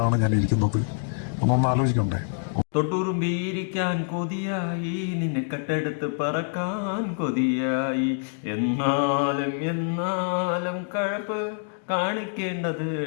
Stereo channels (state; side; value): silent; right; 61 dB below the other